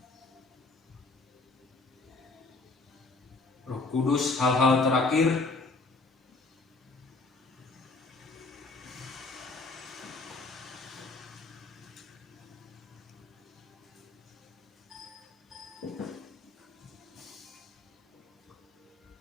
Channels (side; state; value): right; quieter; 3.5 dB